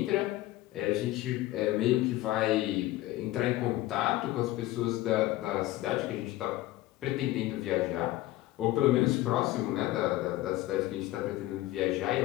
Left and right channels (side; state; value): right; quieter; 16.5 dB